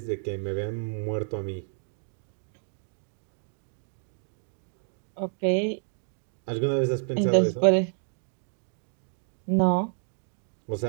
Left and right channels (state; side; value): silent; left; 56 dB below the other